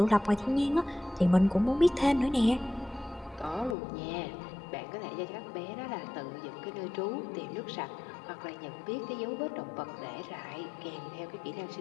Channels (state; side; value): drops out; right; at 3.8 s